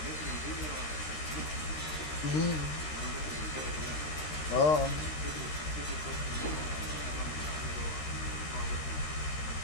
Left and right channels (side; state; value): right; late; 13 ms